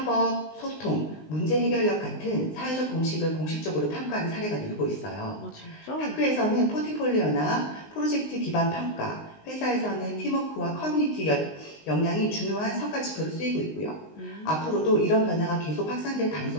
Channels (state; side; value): late; right; 19 ms